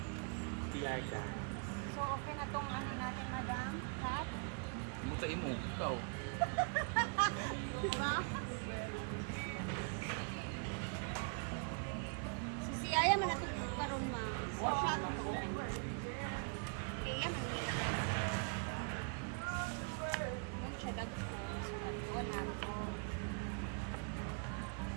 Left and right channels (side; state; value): left; quieter; 39.5 dB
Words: So okay na tong ano natin, madam? Hat? Mutain mo, ikaw. Diba? Si Aya man natugtog karon ma. Or siya tugtog. Kaya man nila na. Mun siya dagko, so dagko nato.